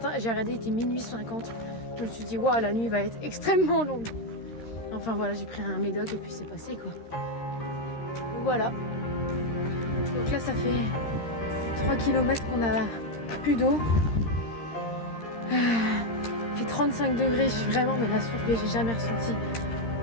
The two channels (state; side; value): late; right; 13 ms